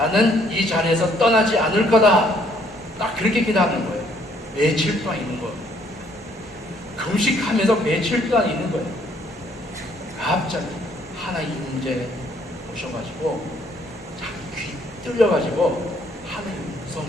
이 자리에서 떠나지 않을 거다. 딱 그렇게 기도하는 거예요. 며칠 동안 있는 거예요. 금식하면서 며칠 동안 있는 거예요. 갑자기 하나님 문제 오셔가지고 자기 귀 뚫려가지고 하나님 음성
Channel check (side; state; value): both; normal; correlation 0.65